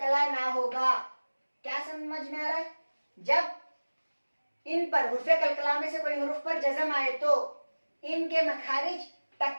ना होगा। क्या समझ में आ रहा है? जब इन पर हुर्फे कलकला में से कोई हुर्फ पर जज़म आए तो इनके मखारिज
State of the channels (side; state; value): both; inverted; correlation -1.00